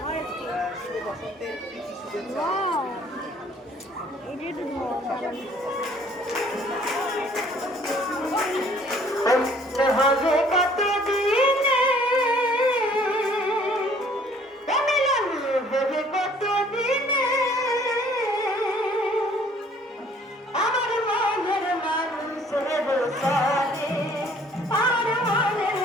শুভ বসন্তের প্রীতি শুভেচ্ছা। হবে কত দিনে হবে কত দিনে আমার মনের মানুষের সানে, আমার মনের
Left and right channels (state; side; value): normal; both; correlation 0.57